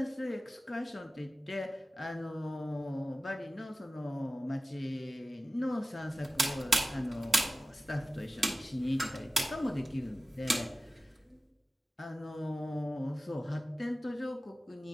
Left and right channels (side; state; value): both; normal; correlation 0.96